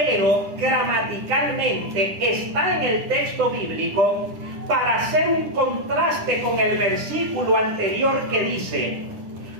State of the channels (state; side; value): late; left; 10 ms